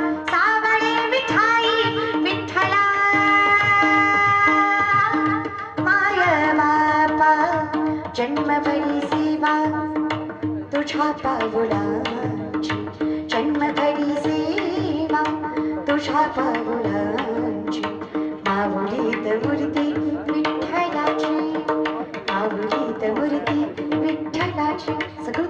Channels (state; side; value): identical; both; correlation 1.00